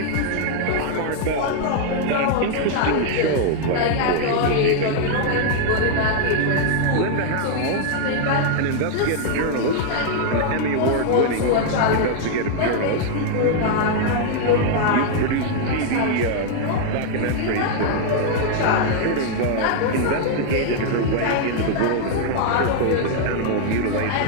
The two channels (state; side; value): different; both; correlation 0.00